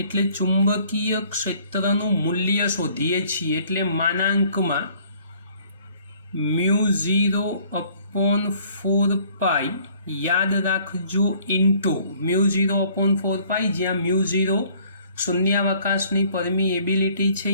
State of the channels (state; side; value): inverted; both; correlation -0.58